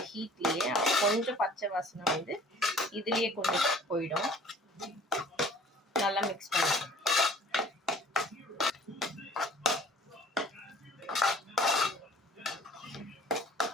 ஹீட்லேயே. கொஞ்சம் பச்சை வாசனை இதுலேயே கொஞ்சம் போயிடும். நல்லா மிக்ஸ் பண்ணிக்கலாம்.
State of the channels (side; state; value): both; normal; correlation 0.51